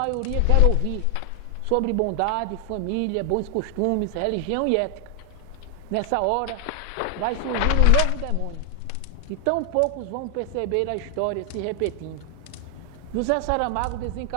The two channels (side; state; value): both; different; correlation 0.00